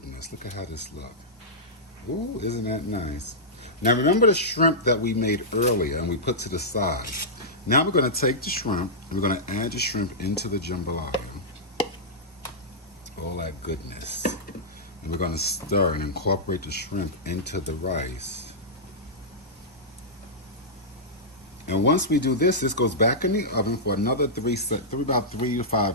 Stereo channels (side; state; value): both; normal; correlation -0.12